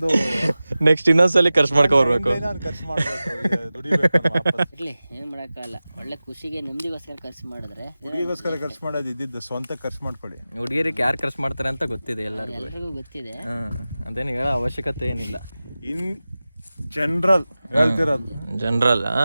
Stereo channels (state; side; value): inverted; both; correlation -0.96